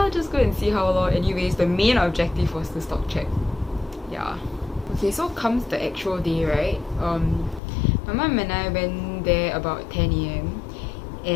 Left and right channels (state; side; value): drops out; right; at 7.6 s